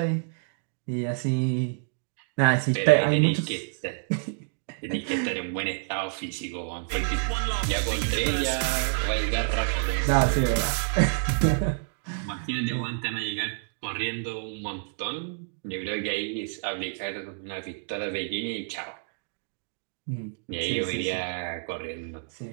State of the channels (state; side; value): silent; left; digital silence